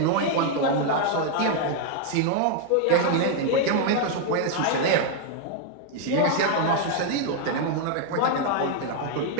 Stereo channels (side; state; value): both; different; correlation 0.00